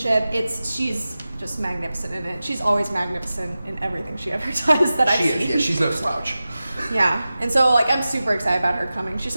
She's just magnificent in it. She's always magnificent in everything she ever does that I've seen. Yeah, she's no slouch. Yeah, and so I'm super excited about her coming. She's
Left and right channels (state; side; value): inverted; both; correlation -0.95